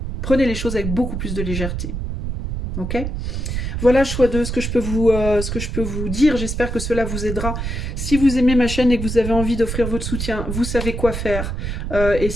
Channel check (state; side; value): noise; right; rumble, 4 dB below the sound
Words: Prenez les choses avec beaucoup plus de légèreté. Ok ? Voilà, choix 2, ce que je peux vous dire. J'espère que cela vous aidera. Si vous aimez ma chaîne et que vous avez envie d'offrir votre soutien, vous savez quoi faire. Et